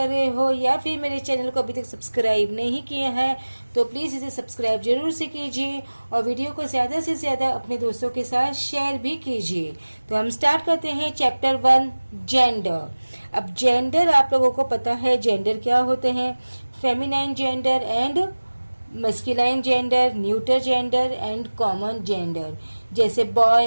रहे हो या फिर मेरे चैनल को अभी तक सब्सक्राइब नहीं किया है तो प्लीज़ इसे सब्सक्राइब जरूर से कीजिए और वीडियो को ज़्यादा से ज़्यादा अपने दोस्तों के साथ शेयर भी कीजिए। तो हम स्टार्ट करते हैं चैप्टर 1 जेंडर। अब जेंडर आप लोगों को पता है जेंडर क्या होते हैं। Feminine gender and masculine gender, neuter gender and common gender, जैसे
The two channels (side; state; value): both; inverted; correlation -1.00